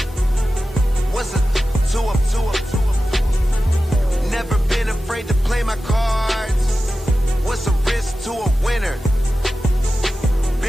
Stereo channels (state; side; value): normal; both; correlation 0.94